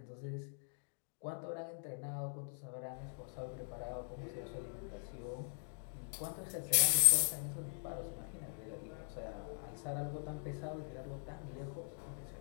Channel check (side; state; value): right; silent; digital silence